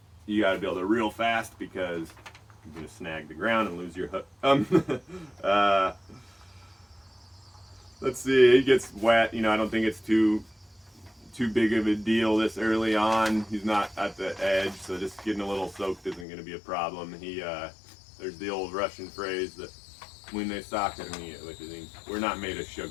you got to be able to reel fast because you're going to snag the ground and lose your hook. Let's see, he gets wet. I don't think it's too big of a deal this early on. He's not at the edge, so just getting a little soaked isn't going to be a problem. There's the old Russian phrase that when they soccer me, which is, we're not made of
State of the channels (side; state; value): right; drops out; at 16.2 s